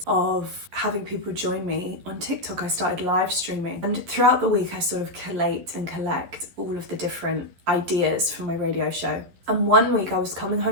of having people join me on TikTok. I started live streaming, and throughout the week I sort of collate and collect all of the different ideas for my radio show. And one week I was coming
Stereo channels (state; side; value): late; left; 11 ms